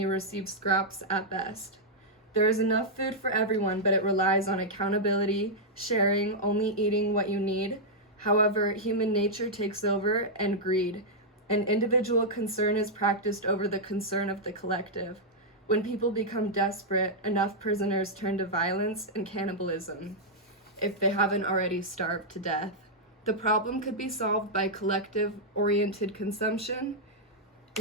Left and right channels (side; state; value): both; normal; correlation -0.06